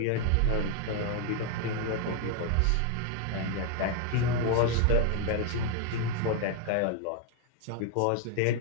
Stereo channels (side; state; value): both; different; correlation 0.00